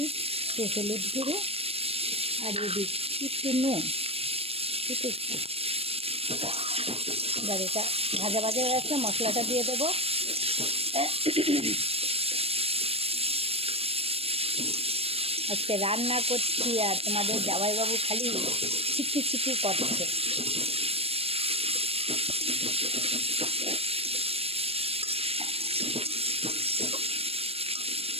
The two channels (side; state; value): left; late; 0.28 ms